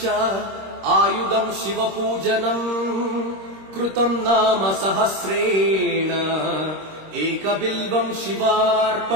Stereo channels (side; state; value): left; late; 26 ms